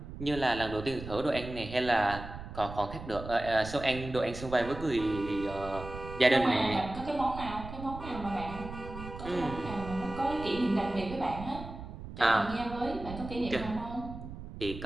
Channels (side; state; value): right; noise; rumble, 11 dB below the sound